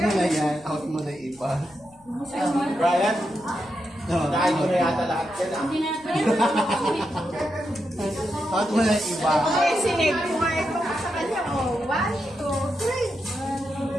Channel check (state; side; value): noise; left; rumble, 29 dB below the sound